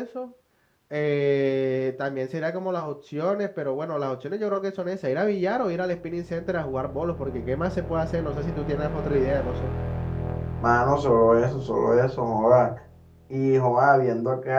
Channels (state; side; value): identical; both; correlation 1.00